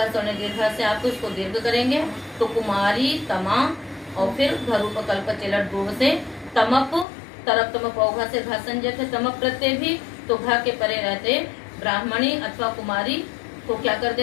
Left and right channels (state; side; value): drops out; right; at 7.1 s